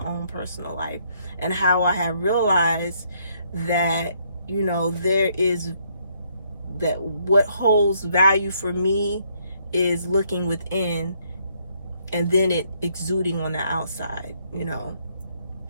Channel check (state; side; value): inverted; both; correlation -0.70